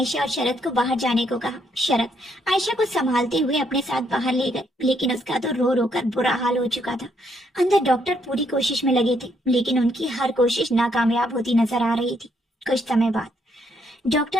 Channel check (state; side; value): normal; both; correlation 0.73